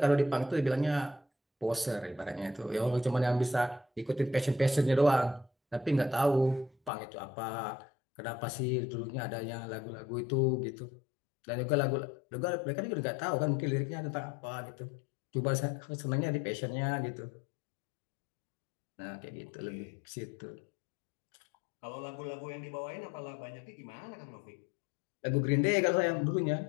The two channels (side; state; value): right; drops out; at 6.9 s